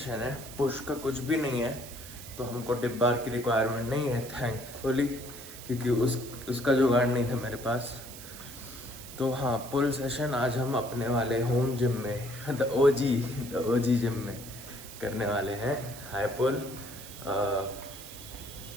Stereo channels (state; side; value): noise; right; hiss, 14 dB below the sound